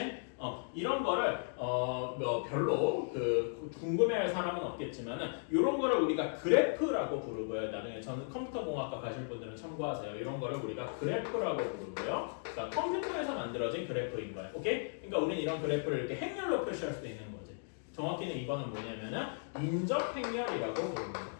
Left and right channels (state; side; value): silent; right; digital silence